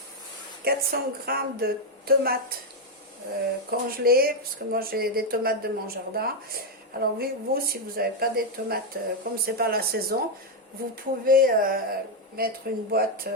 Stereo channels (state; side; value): normal; both; correlation 0.02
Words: 400 g de tomates congelées, parce que moi j'ai des tomates de mon jardin. Alors vous, si vous n'avez pas des tomates, comme c'est pas la saison, vous pouvez mettre une boîte